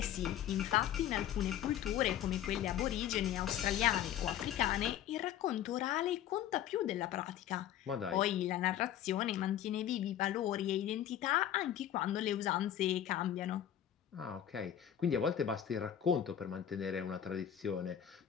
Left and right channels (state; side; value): quieter; right; 10.8 dB